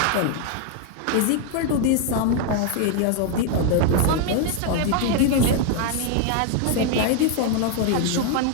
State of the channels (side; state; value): both; different; correlation 0.00